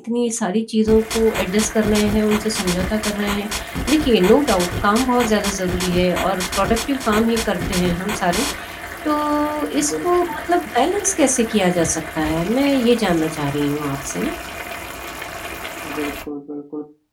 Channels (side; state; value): both; identical; correlation 1.00